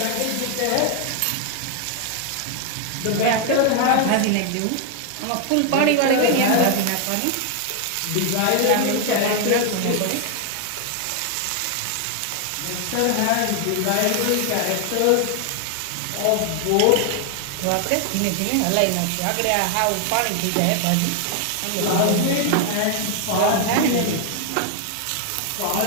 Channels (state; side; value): different; both; correlation 0.00